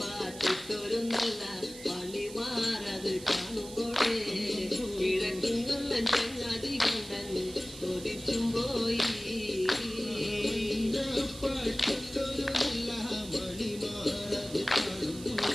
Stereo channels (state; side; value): noise; right; hiss, 15 dB below the sound